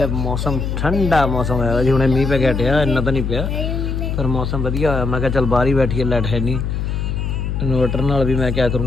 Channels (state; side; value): noise; left; hum, 2 dB below the sound